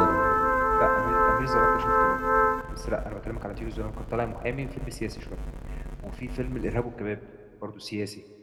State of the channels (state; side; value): identical; both; correlation 1.00